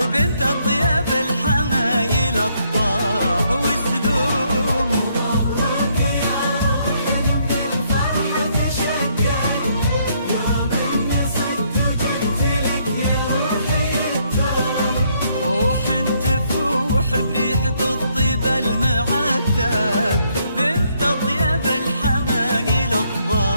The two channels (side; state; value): both; inverted; correlation -0.71